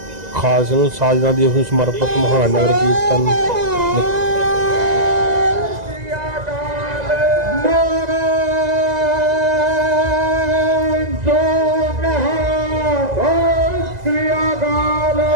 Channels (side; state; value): left; late; 2.0 ms